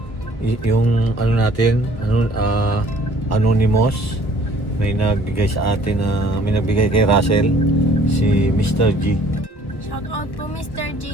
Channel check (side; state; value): right; late; 1.3 ms